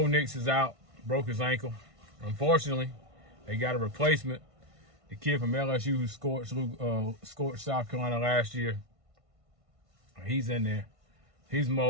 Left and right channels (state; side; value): late; left; 1.5 ms